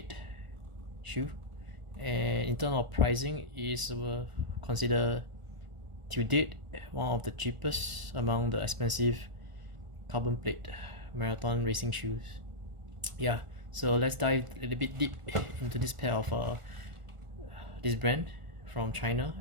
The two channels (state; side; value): late; left; 1.4 ms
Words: shoe, and in terms of pricing is considered to date one of the cheapest among the expensive carbon plate marathon racing shoes. Yeah, so let's dive a little bit deep into this pair of this brand from China,